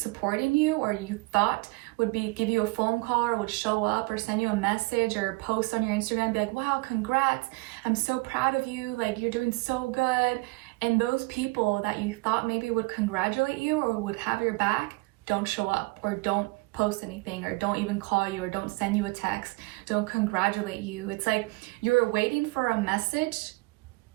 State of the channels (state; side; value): quieter; left; 25.2 dB